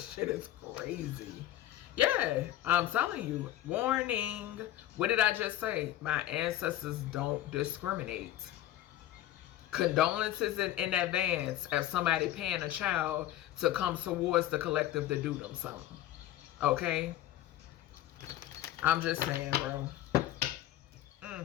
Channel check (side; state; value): right; quieter; 13.5 dB